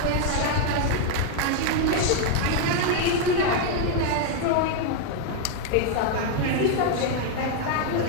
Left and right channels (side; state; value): both; different; correlation 0.01